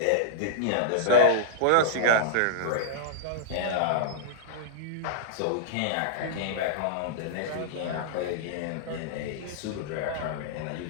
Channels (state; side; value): different; both; correlation -0.02